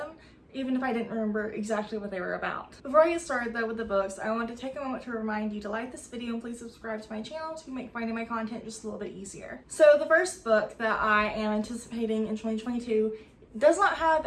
even if I didn't remember exactly what they were about. Before I get started though with the books, I want to take a moment to remind you to like this video and please subscribe to my channel to make finding my content just a little bit easier. So the first book that I am anticipating in 2022 does not have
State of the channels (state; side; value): identical; both; correlation 1.00